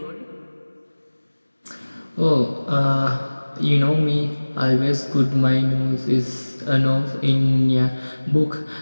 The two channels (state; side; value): inverted; both; correlation -1.00